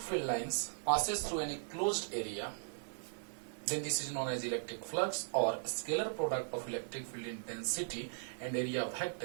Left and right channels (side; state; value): left; silent; digital silence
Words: field lines passes through any closed area, then this is known as electric flux, or scalar product of electric field intensity and area